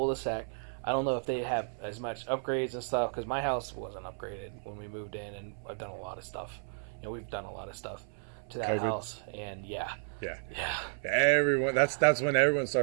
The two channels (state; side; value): silent; left; 56 dB below the other